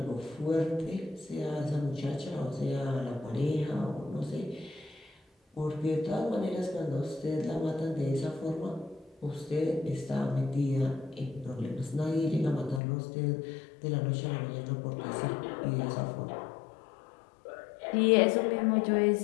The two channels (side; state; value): right; drops out; at 12.8 s